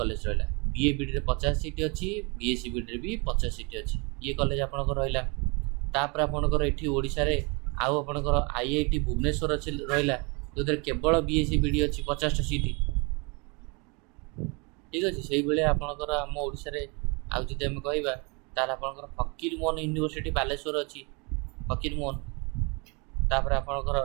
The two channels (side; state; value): left; quieter; 30.9 dB